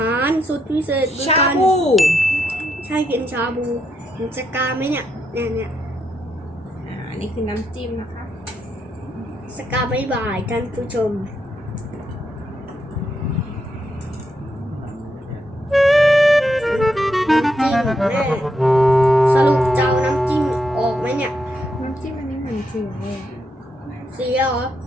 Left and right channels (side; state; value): both; normal; correlation 0.80